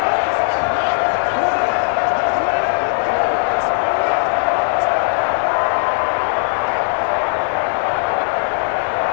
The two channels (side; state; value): right; silent; 62 dB below the other